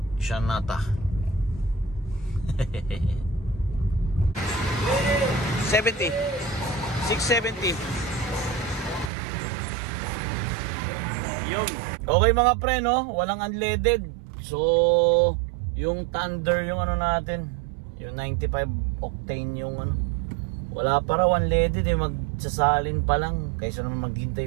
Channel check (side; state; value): left; drops out; at 9.1 s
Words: Shanata. 70 670. Yung okay mga pre, no? Walang unleaded. So yung Thunder yung ano natin, yung 95 octane yung ano, wala pa raw unleaded eh. Magsasalin pa lang kaysa naman